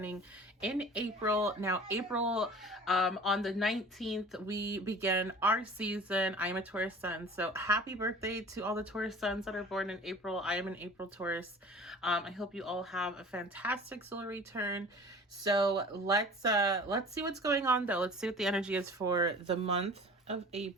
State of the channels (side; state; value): both; normal; correlation 0.43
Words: in April. Now April, on the 19th, we begin our season. I am a Taurus sun, so happy birthday to all the Taurus suns that are born in April. I am an April Taurus. I hope you all have a fantastic solar return. So let's see what's going on though. Let's see what the energy is for the month of